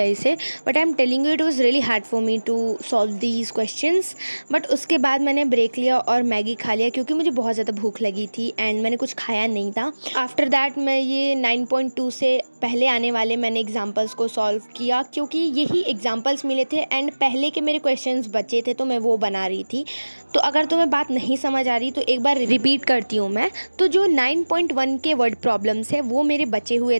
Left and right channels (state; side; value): inverted; both; correlation -1.00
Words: इसे, but I am telling you it was really hard for me to solve these questions. But उसके बाद मैंने ब्रेक लिया और मैगी खा लिया क्योंकि मुझे बहुत ज़्यादा भूख लगी थी एंड मैंने कुछ खाया नहीं था। आफ्टर दैट मैं ये 9.2 से पहले आने वाले मैंने एग्जाम्पल्स को सॉल्व किया क्योंकि यही एग्जाम्पल्स मिले थे एंड पहले के मेरे क्वेश्चंस बचे थे तो मैं वो बना रही थी। तो अगर तुम्हें बात नहीं समझ आ रही तो एक बार रिपीट करती हूँ मैं। तो जो 9.1 के वर्ड प्रॉब्लम्स है वो मेरे बचे हुए